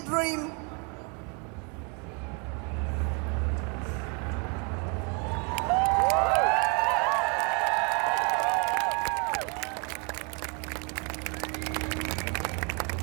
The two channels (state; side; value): quieter; left; 34.5 dB